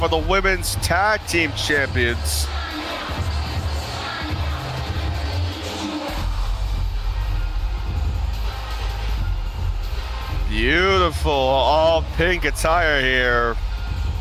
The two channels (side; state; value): both; identical; correlation 1.00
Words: of the Women's Tag Team Champions. Beautiful all pink attire here.